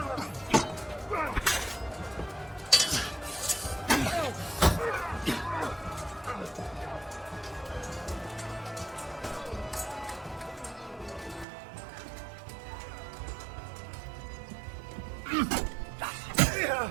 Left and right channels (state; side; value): drops out; left; at 11.5 s